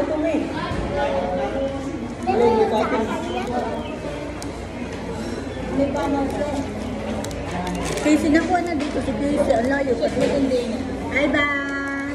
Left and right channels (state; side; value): identical; both; correlation 1.00